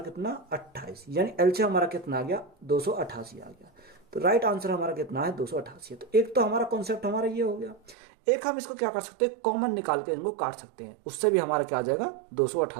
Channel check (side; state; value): left; drops out; at 8.0 s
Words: 28, यानी एलसीएम हमारा कितना आ गया? 288 आ गया। तो राइट आंसर हमारा कितना है? 288। तो एक तो हमारा कॉन्सेप्ट हमारा ये हो गया। एक हम इसको क्या कर सकते हैं? कॉमन निकाल के इनको काट सकते हैं, उससे भी हमारा क्या आ जाएगा?